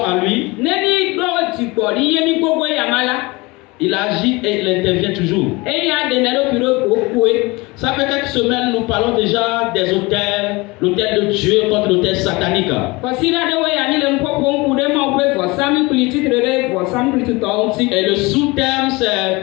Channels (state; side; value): quieter; right; 24.0 dB